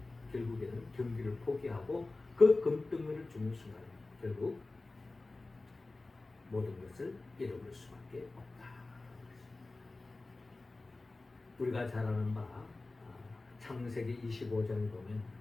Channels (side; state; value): right; quieter; 3.3 dB